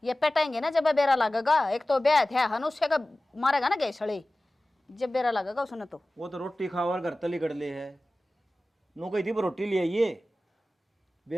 ये पेटेंगे ना जब बेरा लगेगा एक तो ब्याह थे हनुष्य का मारेगा ना गैसड़े जब बेरा लगेगा उसने तो वो तो रोटी खावा घर तली कड़ ले है नो कही थी वो रोटी ले आइए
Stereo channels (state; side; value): normal; both; correlation 0.97